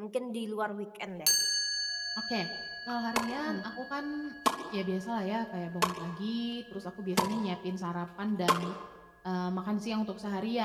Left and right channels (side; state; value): both; identical; correlation 1.00